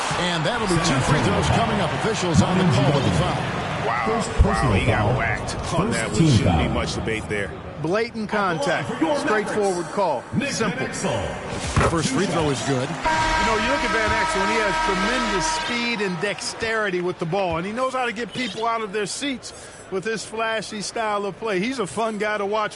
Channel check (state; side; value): identical; both; correlation 1.00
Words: And that'll be 2 free throws coming up. Officials on the call of the foul. Wow, he got whacked on that. There shouldn't be much debate there. Blatant contact. Straightforward call. Simple. First free throw is good. You know, you look at Van Exel, and he has tremendous speed and dexterity with the ball, and he knows how to get people out of their seats with his flashy style of play. He's a fun guy to